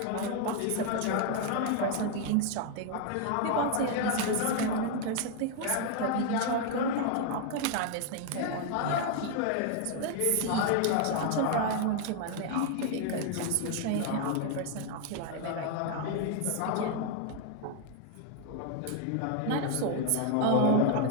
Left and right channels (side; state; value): both; different; correlation 0.00